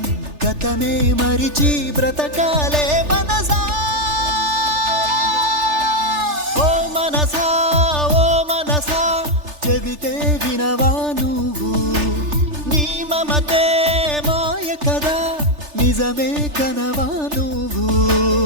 గతమే మరిచి బ్రతకాలే మనసా చెబితే వినవా నువ్వు నీ మమతే మాయ కదా నిజమే కనవా నువ్వు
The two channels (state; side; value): late; left; 3.4 ms